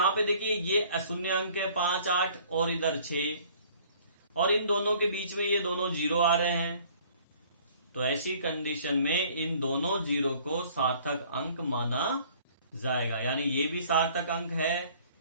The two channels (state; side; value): inverted; both; correlation -0.55